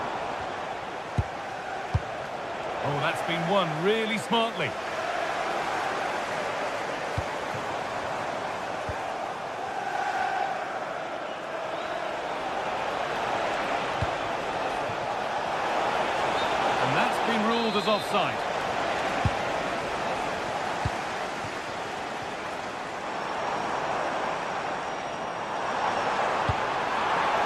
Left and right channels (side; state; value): both; identical; correlation 1.00